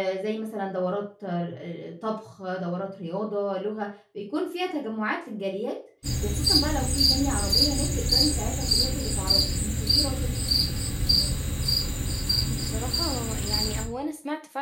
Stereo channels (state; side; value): identical; both; correlation 1.00